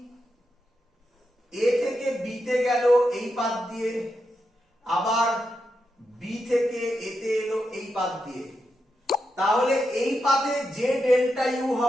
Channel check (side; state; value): both; normal; correlation 0.86